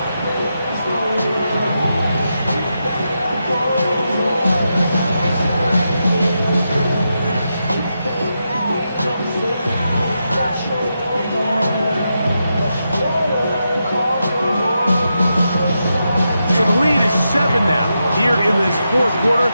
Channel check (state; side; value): inverted; both; correlation -0.86